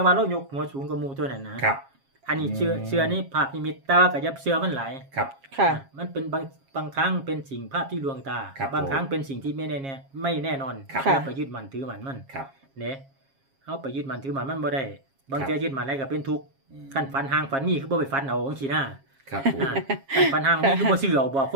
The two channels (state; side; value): late; left; 7.4 ms